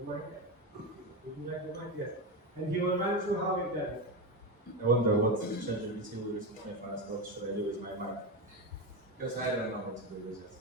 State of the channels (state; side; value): normal; both; correlation 0.16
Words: Would you like the mic? Yes. And he will run through how we've done it. I wonder what ChatGPT will recently find us. What should I do with my mic? Because I don't know what to do with it.